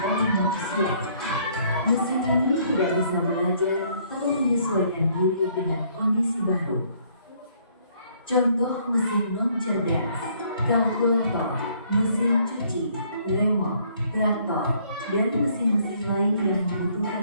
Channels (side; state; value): both; inverted; correlation -0.64